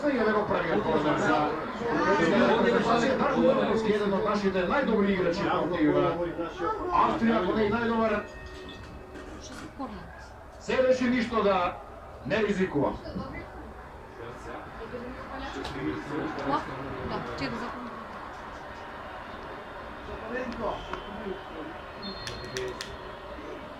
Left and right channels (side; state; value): both; identical; correlation 1.00